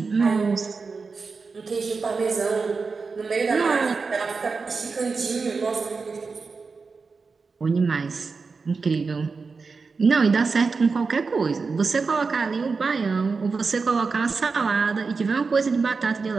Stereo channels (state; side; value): quieter; left; 4.6 dB